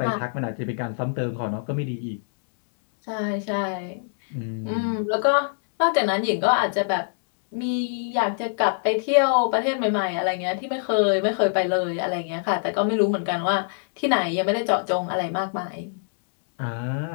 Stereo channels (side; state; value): right; silent; 62 dB below the other